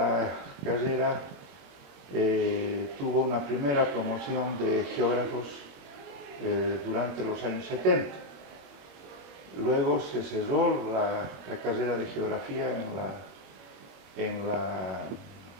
carrera tuvo una primera promoción de geógrafos durante los años 70. Luego se cerró la carrera de geografía en la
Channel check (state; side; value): late; left; 21 ms